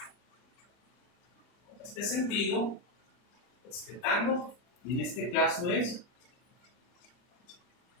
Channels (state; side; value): late; right; 39 ms